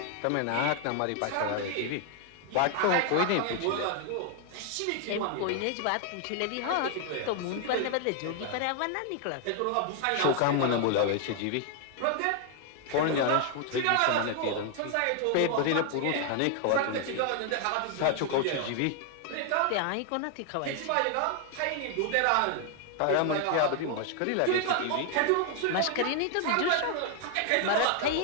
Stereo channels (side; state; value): both; different; correlation 0.00